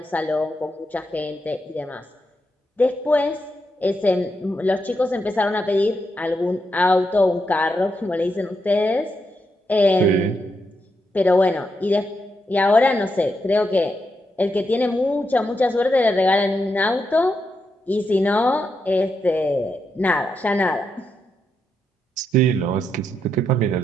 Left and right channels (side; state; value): both; normal; correlation 0.83